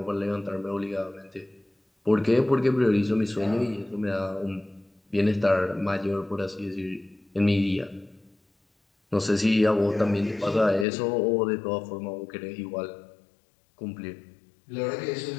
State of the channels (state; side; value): drops out; right; at 10.9 s